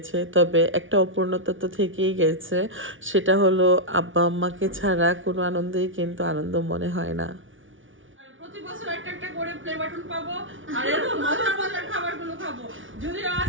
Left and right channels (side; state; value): left; late; 0.57 ms